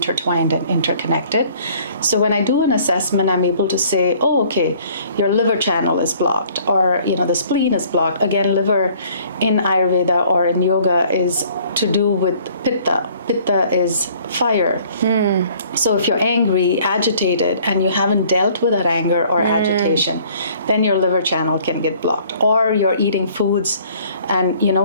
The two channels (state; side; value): inverted; both; correlation -0.56